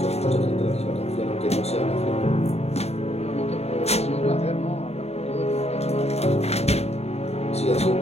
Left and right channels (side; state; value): right; late; 0.30 ms